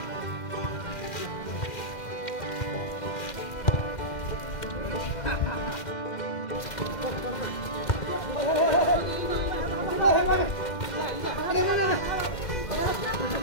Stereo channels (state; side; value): late; right; 2.1 ms